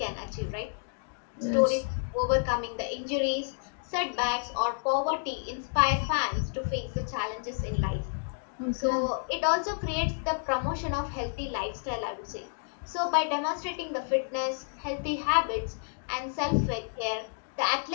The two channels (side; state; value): right; silent; digital silence